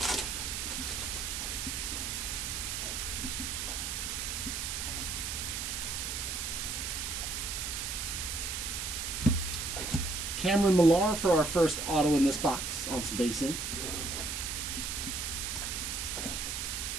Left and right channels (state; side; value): noise; right; hiss, 2 dB below the sound